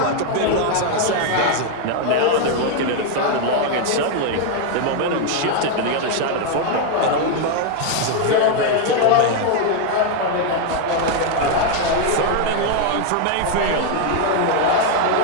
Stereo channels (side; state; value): both; different; correlation 0.01